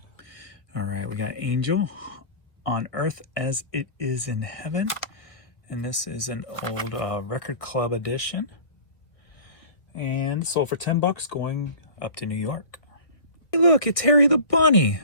All right, we got Angel, On Earth as It Is in Heaven. And this is an old record club edition. And sold for $10, going up to New York. Hey, look, it's Harry the Bunny.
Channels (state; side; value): late; right; 1.5 ms